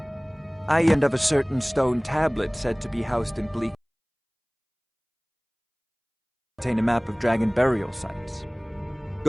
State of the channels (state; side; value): identical; both; correlation 1.00